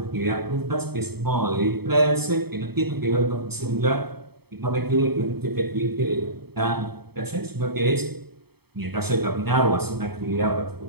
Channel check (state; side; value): late; left; 0.97 ms